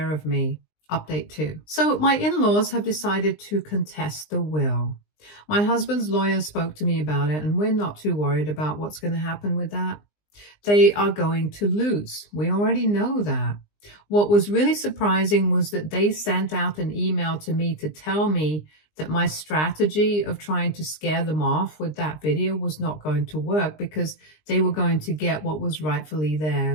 of me. Update 2. So my in-laws have decided to contest the will. My husband's lawyer spoke to me about it, and we're not too worried about what's going to happen with that. They are going to lose. We already know that. What was really surprising was that they sent out an email to me to tell me that my strategy of trying to scare them off with that video was not going to work because they were going to get what was rightfully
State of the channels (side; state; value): right; late; 20 ms